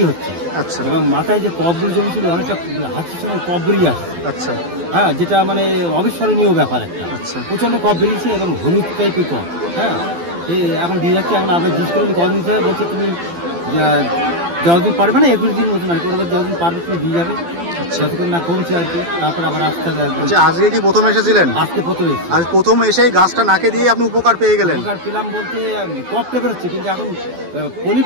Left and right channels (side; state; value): left; late; 12 ms